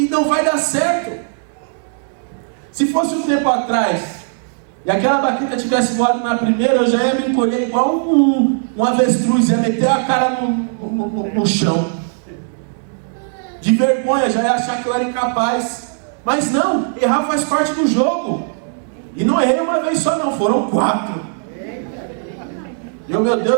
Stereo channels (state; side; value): silent; left; digital silence